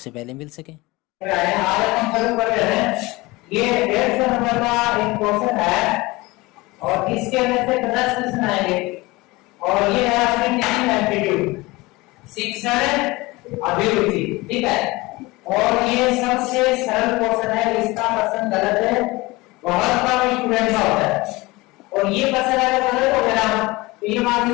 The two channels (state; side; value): quieter; right; 22.0 dB